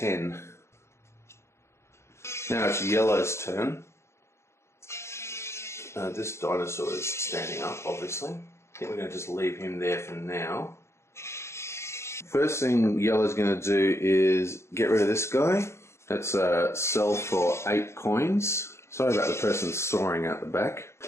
Now it's yellow's turn. This dinosaur is standing up, obviously. I think we're going to just leave him there for now. First thing yellow's going to do is get rid of this guy. That's sell for 8 coins. Sorry about the person soaring out the back.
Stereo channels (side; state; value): right; late; 0.13 ms